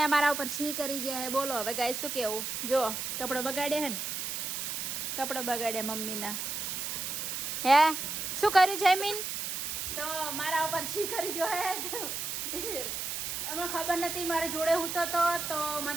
અમારા ઉપર છી કરી જાય. બોલો હવે ગાય શું કેવું? જો કપડો બગાડ્યા હે ને, કપડો બગાડ્યા મમ્મીના. હે શું કર્યું જયમીન? તો મારા ઉપર છી કરી જો હે. અમને ખબર નથી, મારે જોડે હું તો મને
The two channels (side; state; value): right; noise; hiss, 3 dB below the sound